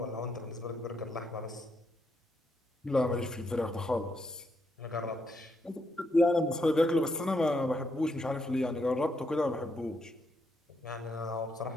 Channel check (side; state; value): both; normal; correlation 0.78